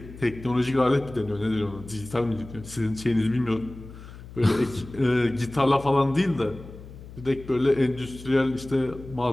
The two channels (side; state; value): left; noise; hum, 16 dB below the sound